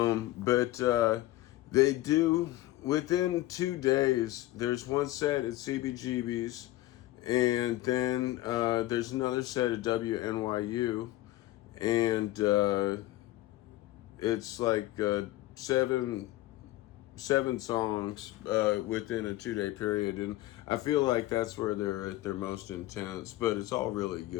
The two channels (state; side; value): quieter; right; 16.7 dB